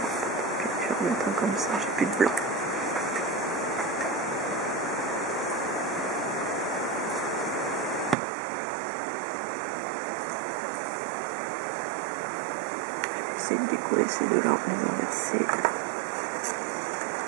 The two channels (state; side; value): drops out; left; at 8.2 s